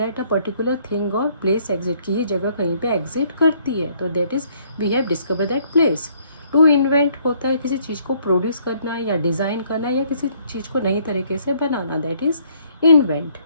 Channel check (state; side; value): inverted; both; correlation -0.64